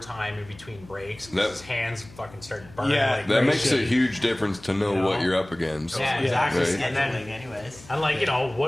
in between breaks because That- his hands fucking start burning. Yeah. like That crazy. makes a huge difference to know You know? what you're up against. Yeah, exactly. Right. And then, Scheduling, anyways. and like, you know,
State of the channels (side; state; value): left; noise; hum, 21 dB below the sound